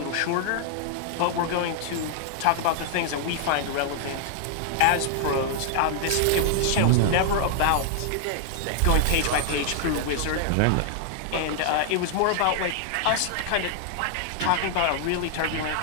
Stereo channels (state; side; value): different; both; correlation 0.00